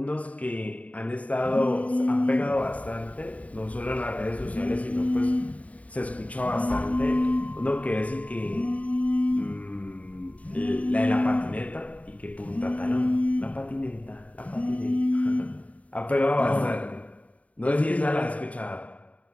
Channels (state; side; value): late; right; 0.068 ms